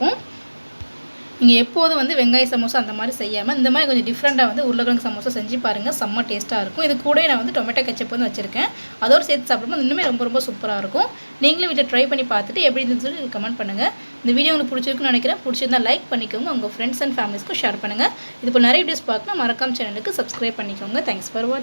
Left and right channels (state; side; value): inverted; both; correlation -1.00